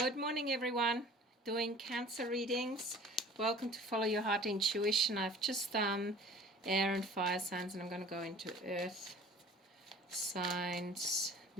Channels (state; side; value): normal; both; correlation 0.46